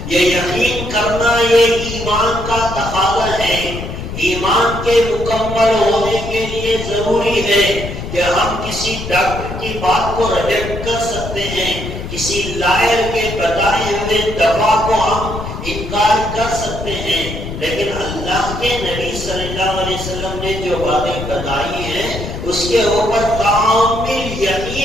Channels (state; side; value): noise; left; rumble, 8 dB below the sound